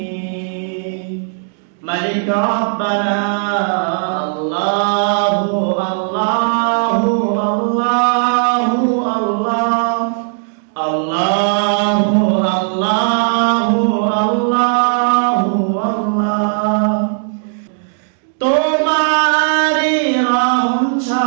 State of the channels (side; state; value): left; silent; digital silence